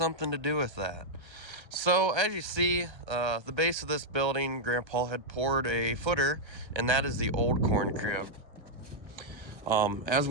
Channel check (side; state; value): left; late; 1.3 ms